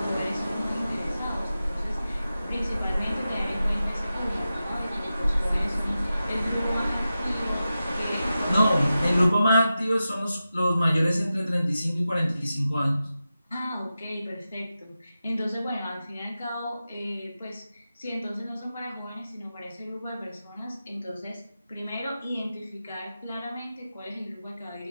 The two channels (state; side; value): inverted; both; correlation -0.92